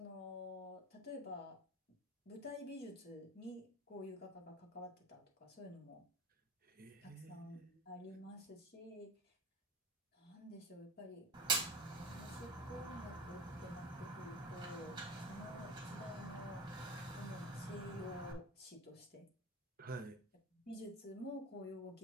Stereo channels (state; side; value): normal; both; correlation 0.29